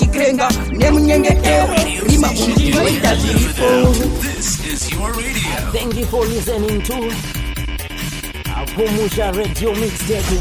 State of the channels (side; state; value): both; identical; correlation 1.00